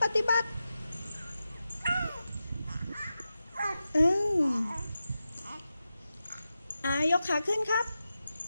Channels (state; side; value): inverted; both; correlation -0.91